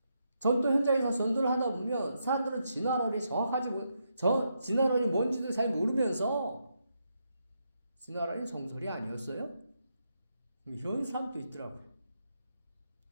전도 현장에서 전도를 하다 보면 사람들은 진화론이 정확하지 진화론이 뭔지도 잘 모르면서 진화론이 정설이 아니었어요? 이런 사람도 있더라고요.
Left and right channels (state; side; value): inverted; both; correlation -0.81